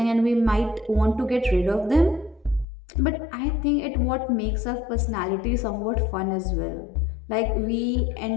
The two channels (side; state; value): right; drops out; at 2.7 s